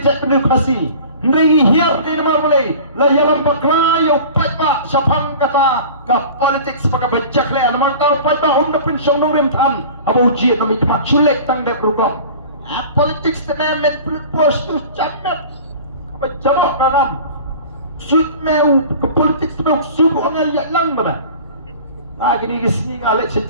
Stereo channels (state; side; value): inverted; both; correlation -0.41